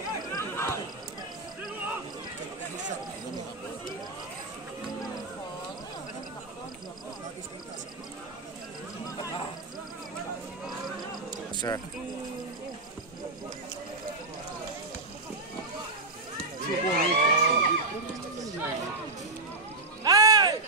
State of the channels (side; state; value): left; quieter; 3.1 dB